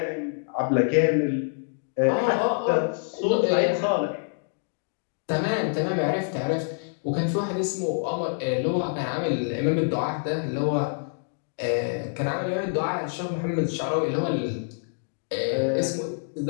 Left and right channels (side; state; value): right; silent; digital silence